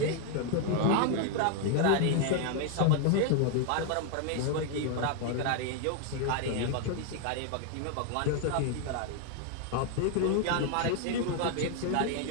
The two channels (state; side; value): different; both; correlation 0.00